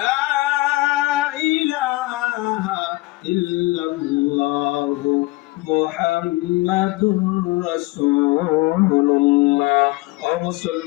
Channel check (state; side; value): quieter; right; 21.5 dB